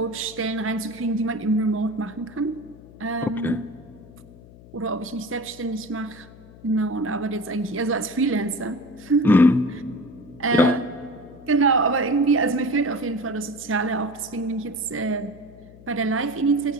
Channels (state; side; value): noise; left; hum, 20 dB below the sound